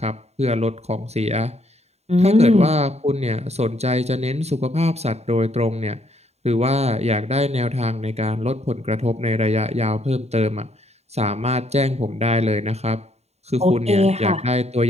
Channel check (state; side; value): late; left; 0.31 ms